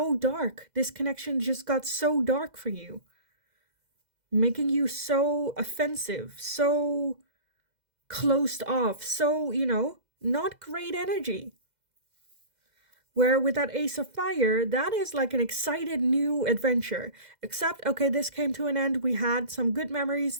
dark. This connection just got so dark for you, making you so offensive, so closed off, so, you know, not great energy. Where with that Ace of Fire, that is like an excited new adventure. Except, okay, this came to an end. We had some good memories.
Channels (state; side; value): late; left; 2.0 ms